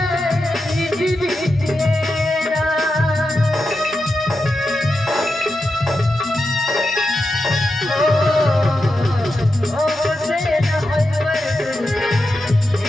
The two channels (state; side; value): normal; both; correlation 0.89